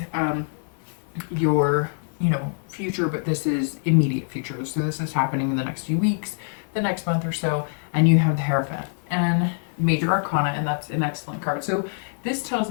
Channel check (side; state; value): right; silent; 62 dB below the other